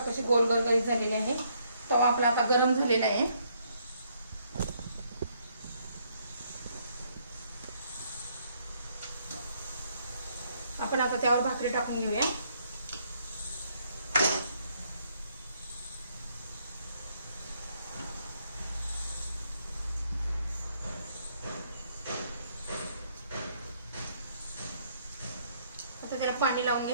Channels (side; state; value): both; inverted; correlation -0.70